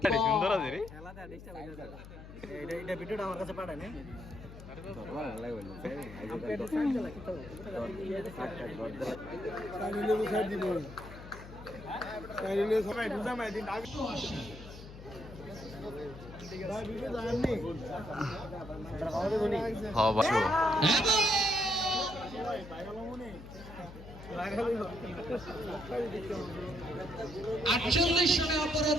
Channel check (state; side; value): noise; left; hum, 14 dB below the sound